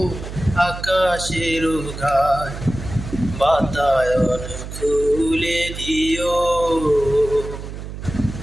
আকাশের গায়, বাতায়ন খুলে দিও।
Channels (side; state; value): right; noise; hum, 9 dB below the sound